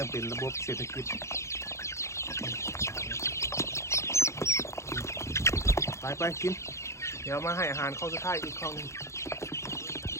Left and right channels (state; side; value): late; right; 0.14 ms